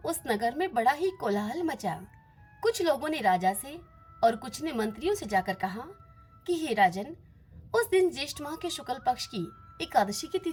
उस नगर में बड़ा ही कोलाहल मचा। कुछ लोगों ने राजा से और कुछ ने मंत्रियों से जाकर कहा कि हे राजन, उस दिन ज्येष्ठ माह के शुक्ल पक्ष की एकादशी की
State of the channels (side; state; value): both; identical; correlation 1.00